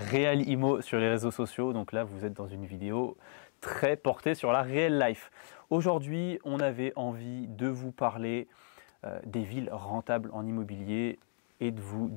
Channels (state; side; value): silent; right; 55 dB below the other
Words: sur les réseaux sociaux. Donc là, vous êtes dans une vidéo très portée sur la real life. Aujourd'hui, on avait envie de vous parler des villes rentables en immobilier et de vous